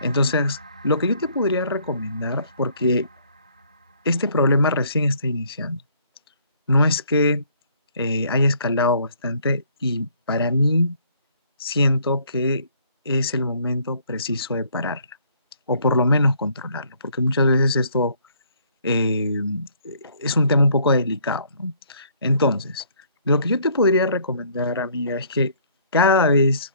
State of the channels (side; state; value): both; inverted; correlation -0.62